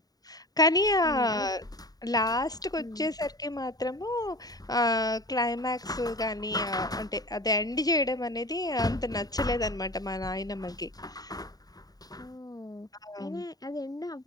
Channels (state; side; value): late; right; 0.18 ms